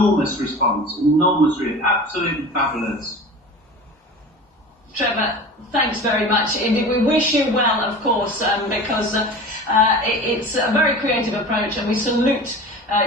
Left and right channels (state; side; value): normal; both; correlation 0.36